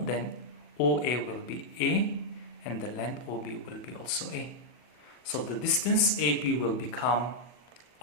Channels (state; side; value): late; right; 40 ms